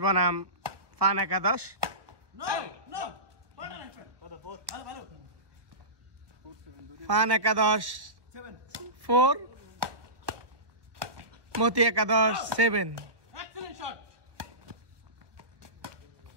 বনাম ফান একাদশ ফান একাদশ 4 মতি একাদশ 7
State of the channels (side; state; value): left; late; 1.3 ms